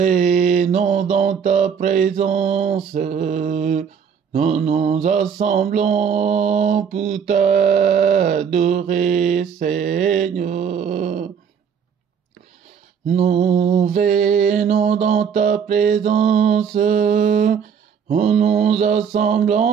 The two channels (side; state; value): left; quieter; 7.1 dB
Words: dans ta présence. Nous nous assemblons pour t'adorer, Seigneur. Nous venons dans ta présence. Nous nous